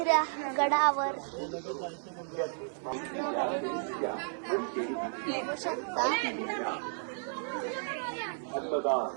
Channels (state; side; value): silent; left; 56 dB below the other